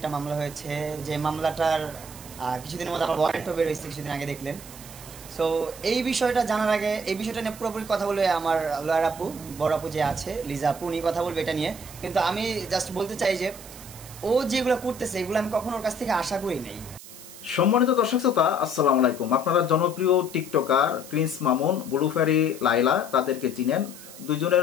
মামলা হয়েছে, যে মামলাটার কিছুদিনের মধ্যে আমার ওয়ারেন্টও বের হয়েছে, কিছুদিন আগে দেখলেন। সো এই বিষয়টা জানার আগে এই বিষয়টা নিয়ে পুরোপুরি কথা বলে আমার লয়ার আপু, বড় আপু যে আছে লিজা আপু, উনি কথা বলবে এটা নিয়ে। কিন্তু আমি জাস্ট বলতে চাই যে ও যেগুলো করতেছে এগুলো আমি কখনো ওর কাছ থেকে আশা করি নাই। সম্মানিত দর্শক শ্রোতা, আসসালামু আলাইকুম। আপনারা জনপ্রিয় টিকটকার প্রিন্স মামুন, ব্লুফেরি লাইলা তাদেরকে চিনেন।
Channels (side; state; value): right; noise; hiss, 16 dB below the sound